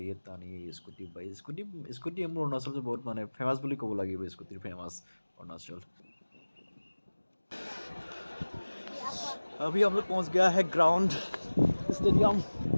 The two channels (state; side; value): inverted; both; correlation -1.00